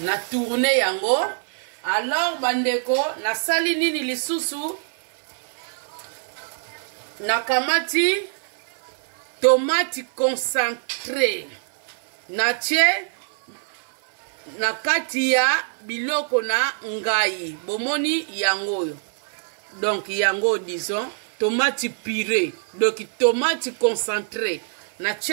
tourner yango. Alors bandeko nasali nini lisusu na kamati tomate concentré na tie na kati ya biloko na ngai bomoni yango. Donc yango disons tomate purée, donc tomate concentré na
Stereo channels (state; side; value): silent; left; 55 dB below the other